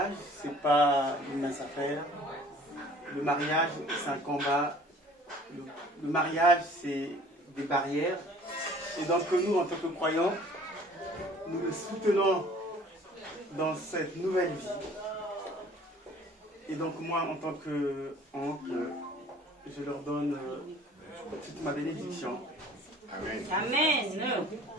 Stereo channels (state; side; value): normal; both; correlation 0.51